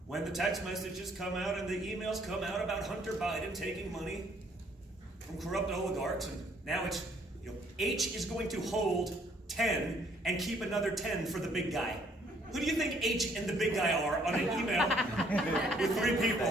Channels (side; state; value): both; normal; correlation 0.65